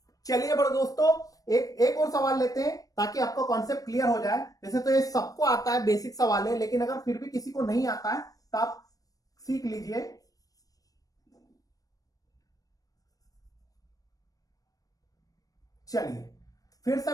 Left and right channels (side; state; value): right; late; 0.18 ms